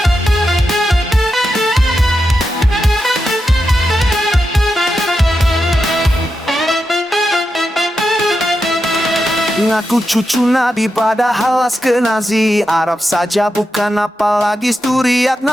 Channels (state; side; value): normal; both; correlation 0.87